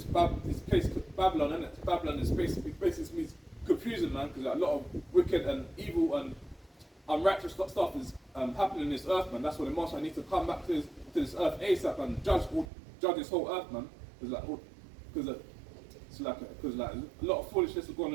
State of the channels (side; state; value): left; drops out; at 12.7 s